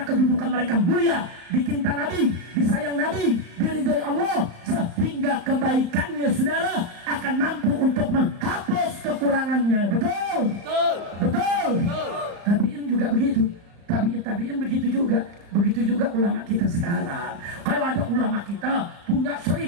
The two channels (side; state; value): left; late; 35 ms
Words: kedudukan mereka mulia, dicinta Nabi, disayang Nabi, diridhoi Allah, sehingga kebaikannya, saudara, akan mampu untuk menghapus kekurangannya. Betul? Betul. Betul. Betul. Tabiin juga begitu. Tabiin begitu juga. Begitu juga ulama kita sekarang. Kalau ada ulama kita punya